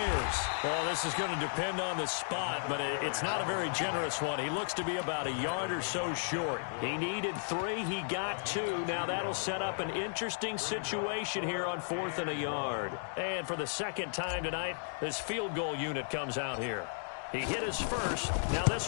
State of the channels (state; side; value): silent; right; digital silence